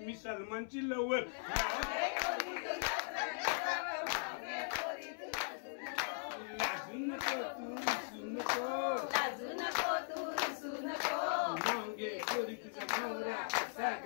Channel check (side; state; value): right; silent; 51 dB below the other